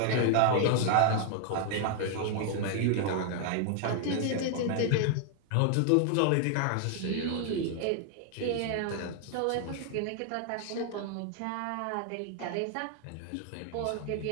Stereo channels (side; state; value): both; different; correlation 0.00